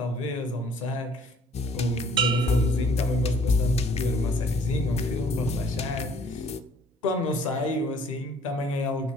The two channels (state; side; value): normal; both; correlation 0.58